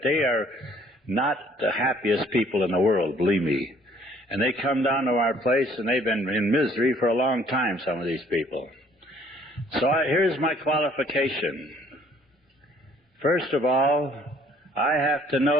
they are not the happiest people in the world, believe me. And they come down to our place, and they've been in misery for a long time, some of these people. So here's my qualification. First of all, I have to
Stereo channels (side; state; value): both; normal; correlation 0.60